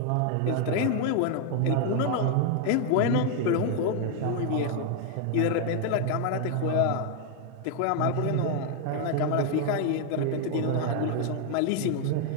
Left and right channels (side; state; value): both; different; correlation 0.00